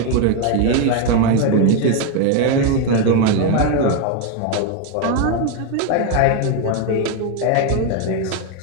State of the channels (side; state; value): both; different; correlation 0.01